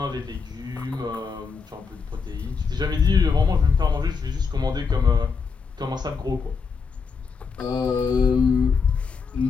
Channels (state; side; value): quieter; right; 5.4 dB